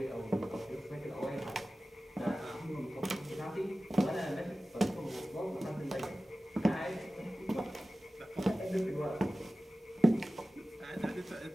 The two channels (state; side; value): normal; both; correlation 0.96